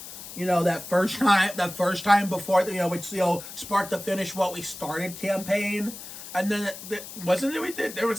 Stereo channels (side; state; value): left; noise; hiss, 12 dB below the sound